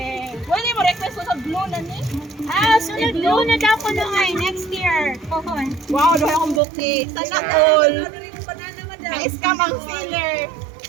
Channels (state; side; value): drops out; left; at 6.6 s